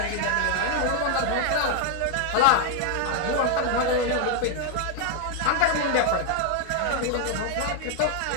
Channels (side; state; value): both; different; correlation 0.00